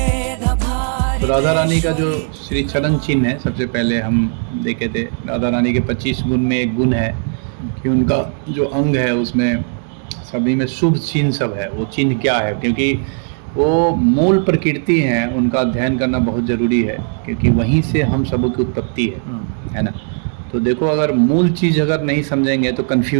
भारी। राधा रानी का जो श्री चरण चिन्ह है, सबसे पहले हम देखे थे राधा रानी के 25 गुण में एक गुण है कि उनका जो अंग है उसमें सभी में शुभ चिन्ह सब है। वो चिन्ह क्या है, क्योंकि वो मूल प्रकृति हैं, उनका अध्ययन करना बहुत ज़रूरी है, क्योंकि वहीं से हम सब की उत्पत्ति है ना। तो देखो, अगर मूल चीज़ अगर नहीं समझेंगे तो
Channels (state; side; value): silent; left; 55 dB below the other